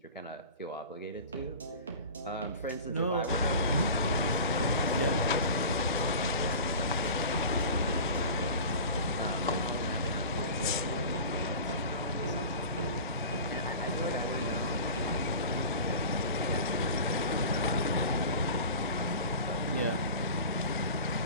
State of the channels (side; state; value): both; inverted; correlation -0.37